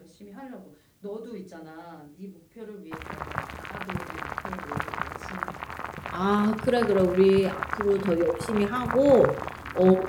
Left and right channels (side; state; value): both; identical; correlation 1.00